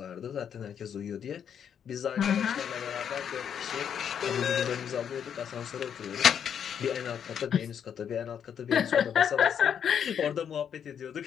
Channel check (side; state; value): right; quieter; 8.3 dB